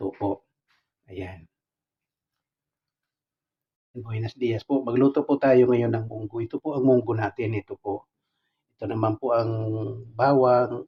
po. Ayan. Buenos dias po. Magluto po tayo ngayon ng munggo. Ito po ang munggo natin. Ito po. Ito naman po ang bawang.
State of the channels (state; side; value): identical; both; correlation 1.00